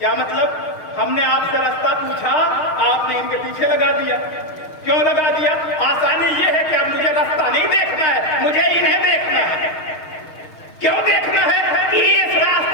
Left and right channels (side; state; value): right; late; 6.4 ms